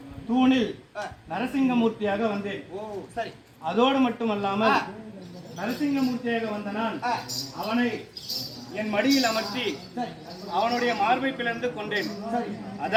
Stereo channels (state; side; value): identical; both; correlation 1.00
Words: தூணில் நரசிங்கமூர்த்தியாக வந்தேன். அதோடு மட்டுமல்லாமல் நரசிங்கமூர்த்தியாக வந்த நான் அவனை என் மடியில் அமர்த்தி அவனுடைய மார்பை பிளந்து கொண்டேன்.